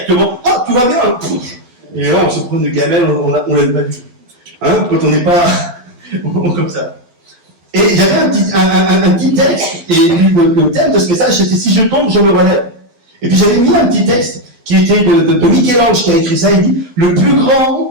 ah, tout va bien, hein. Et là, on se prend une gamelle, on l'a pas vu. Hein, quand on n'est pas, comme ça. Et il y avait un petit texte, et le thème de ce message, c'était si je tombe, je me relève. Et puis j'avais mis un petit texte qui était de Michel-Ange qui a écrit ça, il dit, le plus grand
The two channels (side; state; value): left; late; 12 ms